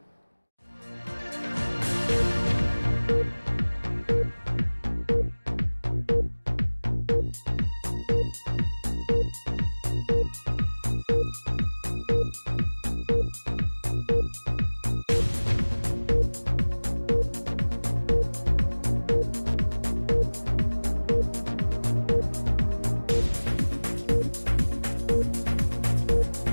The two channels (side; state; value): both; inverted; correlation -1.00